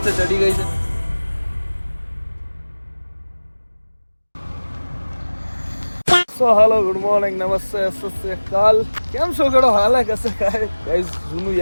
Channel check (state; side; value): inverted; both; correlation -1.00